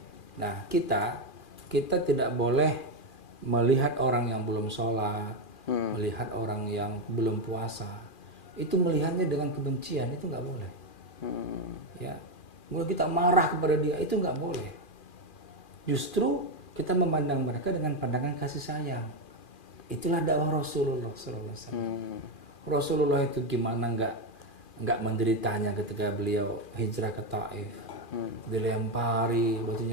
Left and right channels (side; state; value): right; late; 2.4 ms